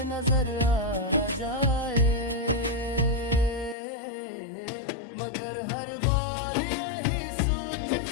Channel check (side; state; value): right; drops out; at 3.8 s